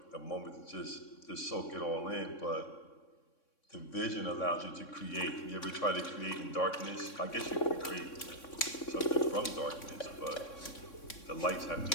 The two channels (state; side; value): late; right; 3.6 ms